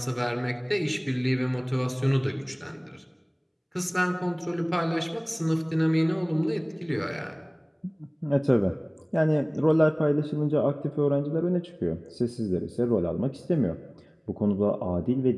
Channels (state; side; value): identical; both; correlation 1.00